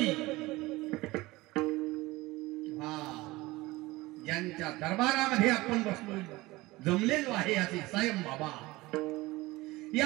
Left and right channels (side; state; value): left; quieter; 20.2 dB